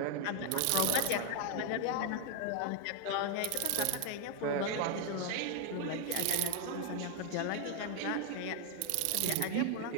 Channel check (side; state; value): both; different; correlation 0.00